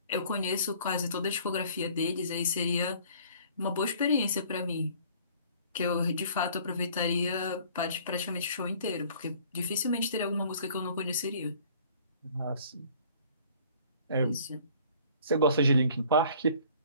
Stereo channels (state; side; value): inverted; both; correlation -0.53